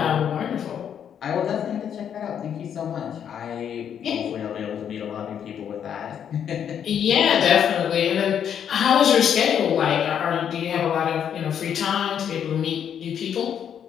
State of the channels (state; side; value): quieter; right; 8.7 dB